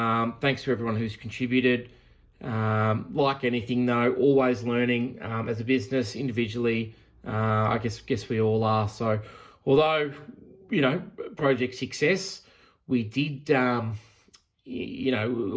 to everyone who's contributed. Like anything though, always learning as a business, individually. I guess we all are. So, although project success, we did, always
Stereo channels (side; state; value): both; identical; correlation 1.00